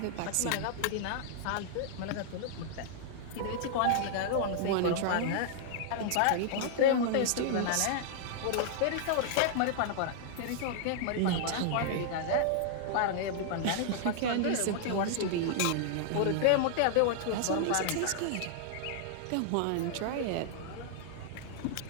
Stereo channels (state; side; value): different; both; correlation -0.01